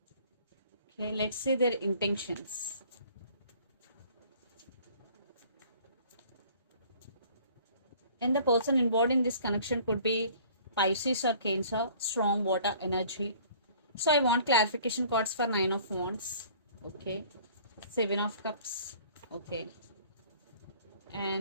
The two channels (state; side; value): inverted; both; correlation -0.53